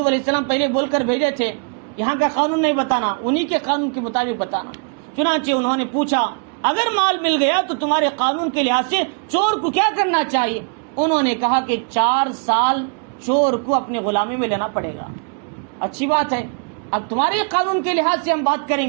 علیہ السلام پہلے بول کر بھیجے تھے یہاں کا قانون نہیں بتانا، انہی کے قانون کے مطابق بتانا. چنانچہ انہوں نے پوچھا اگر مال مل گیا تو تمہارے قانون کے لحاظ سے چور کو کیا کرنا چاہیے؟ انہوں نے کہا کہ 4 سال چور کو اپنے غلامی میں لینا پڑے گا. اچھی بات ہے، اب تمہارے قانون کے لحاظ سے ہم بات کریں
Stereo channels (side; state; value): left; quieter; 38.3 dB